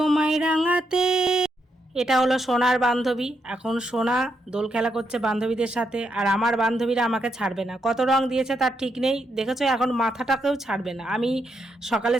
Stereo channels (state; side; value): normal; both; correlation 0.80